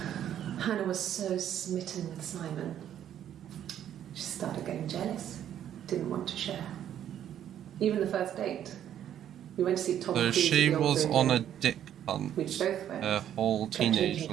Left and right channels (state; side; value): quieter; left; 10.4 dB